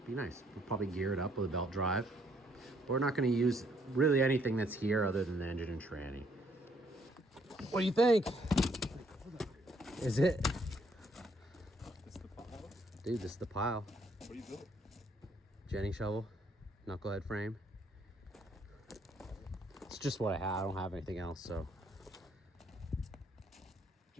Be nice. We'll probably gear it up with a belt drive. But we're not gonna use really anything that's here other than the engine and tranny. What do you think? Is it? This the pile? Dude, this is the pile. What do you build? Jenny shovel, knucklehead frame. It's just what I have. I don't have anything else, so.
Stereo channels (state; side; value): normal; both; correlation 0.68